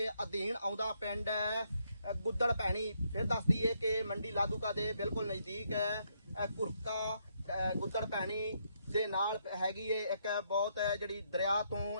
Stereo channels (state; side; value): inverted; both; correlation -0.75